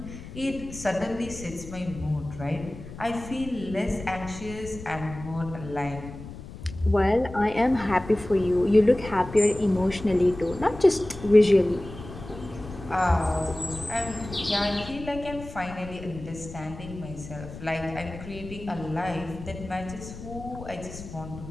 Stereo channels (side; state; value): left; noise; rumble, 13 dB below the sound